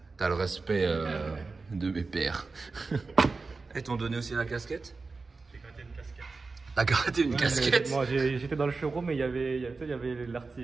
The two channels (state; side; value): quieter; left; 4.0 dB